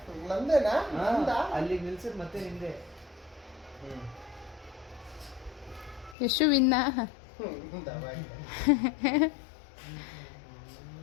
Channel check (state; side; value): drops out; right; at 6.2 s